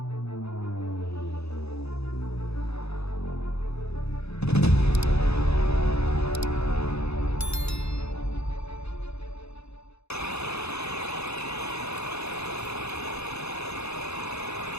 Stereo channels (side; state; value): right; late; 0.79 ms